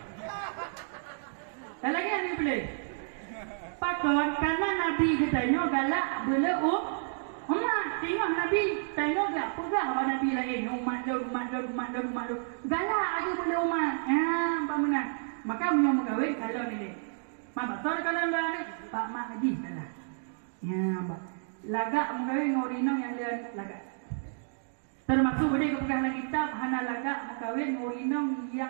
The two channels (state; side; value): silent; left; digital silence